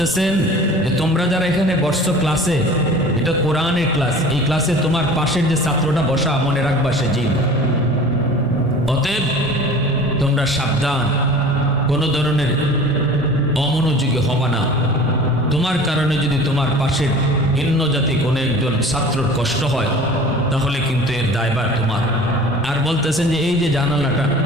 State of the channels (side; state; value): both; normal; correlation 0.42